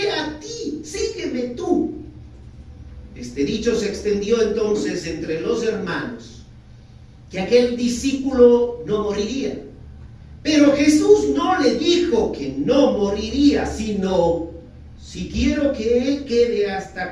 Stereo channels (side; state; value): both; identical; correlation 1.00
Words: a ti? Sígueme tú. Este dicho se extendió entonces entre los hermanos, que aquel discípulo no moriría. Pero Jesús no le dijo que no moriría, sino: si quiero que él quede